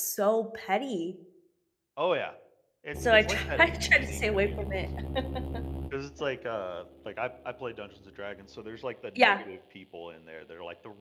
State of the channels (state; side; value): identical; both; correlation 1.00